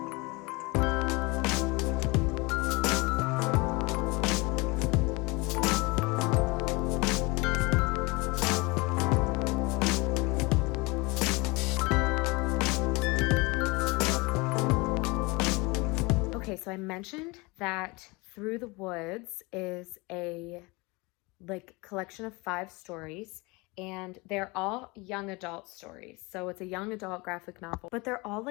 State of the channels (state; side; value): quieter; right; 25.7 dB